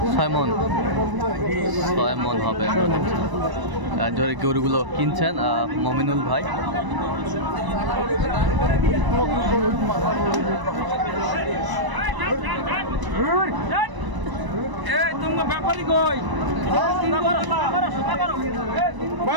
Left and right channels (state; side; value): late; left; 1.0 ms